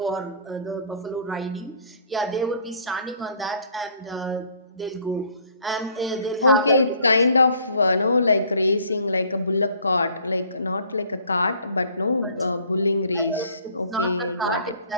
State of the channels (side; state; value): both; inverted; correlation -0.56